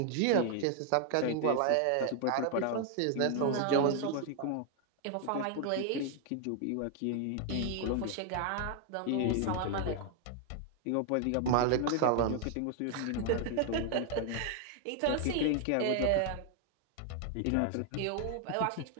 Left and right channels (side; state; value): both; different; correlation 0.00